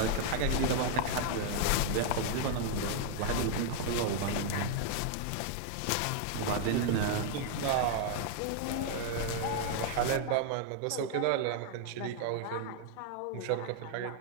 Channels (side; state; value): both; different; correlation 0.00